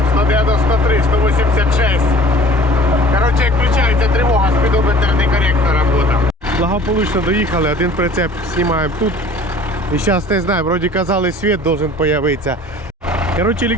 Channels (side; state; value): both; normal; correlation 0.48